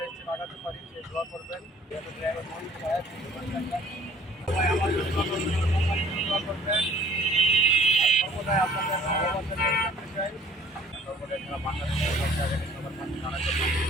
স্টেপ আগাতে পারি সেই দোয়া করবেন। ড্রাইভার মহিন সাহেব, সবাই আমার জন্য দোয়া করবেন, আমার কোম্পানির জন্য দোয়া করবেন। আর সর্বদাই আপনাদের ভালোবাসা নিয়ে থাকতে চাই। সর্বদাই যারা বাংলাদেশের সবার কাছে জানাতে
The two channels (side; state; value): both; normal; correlation 0.54